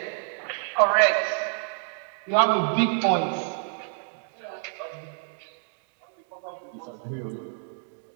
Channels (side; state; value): left; silent; digital silence